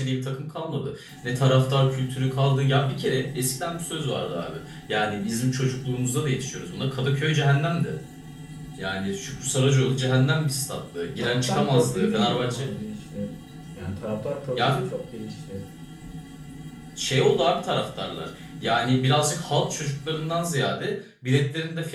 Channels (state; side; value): identical; both; correlation 1.00